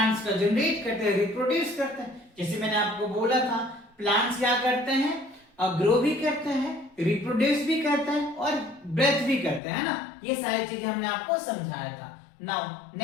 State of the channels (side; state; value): right; drops out; at 9.6 s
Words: का जनरेट करते हैं, रिप्रोड्यूस करते हैं। जैसे मैंने आपको बोला था प्लांट्स क्या करते हैं, ग्रो भी करते हैं, रिप्रोड्यूस भी करते हैं और ब्रेथ भी करते हैं ना, ये सारी चीजें हमने आपको समझाया था। नाउ